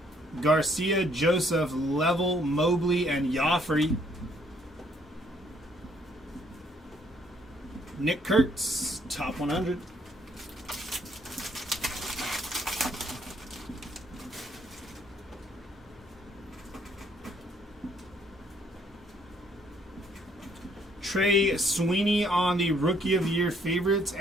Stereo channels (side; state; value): both; normal; correlation 0.66